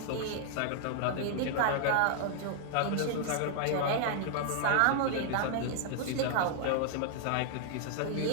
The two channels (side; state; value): both; different; correlation -0.01